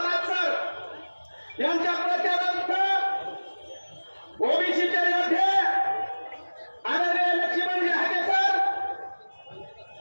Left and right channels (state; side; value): inverted; both; correlation -1.00